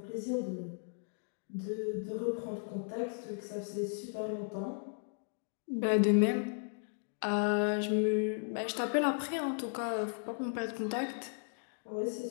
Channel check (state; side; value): silent; right; digital silence